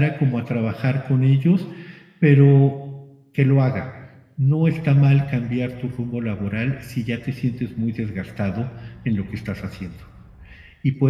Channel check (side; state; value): both; identical; correlation 1.00